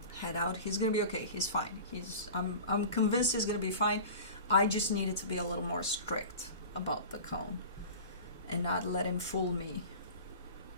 head out. He's gonna be okay. He's fine. I'm convinced he's gonna be fine. I just needed to be a little more strict about the cone and not let him fool me,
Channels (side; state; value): both; inverted; correlation -0.36